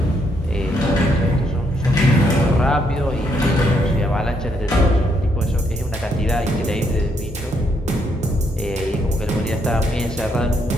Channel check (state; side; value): normal; both; correlation 0.74